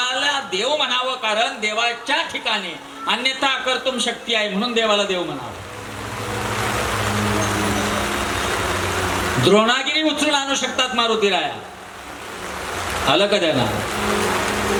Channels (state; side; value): identical; both; correlation 1.00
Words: देव म्हणावं कारण देवाच्या ठिकाणी अन्यथा कर्तुम शक्ती आहे म्हणून देवाला देव म्हणावं. द्रोणागिरी उचलून आणू शकतात मारुतीराया, आलं का त्यांना?